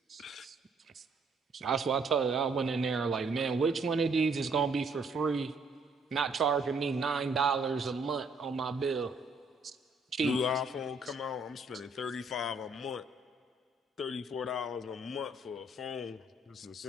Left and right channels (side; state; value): left; quieter; 3.1 dB